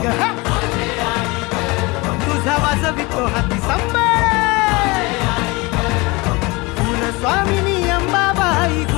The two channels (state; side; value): quieter; right; 24.7 dB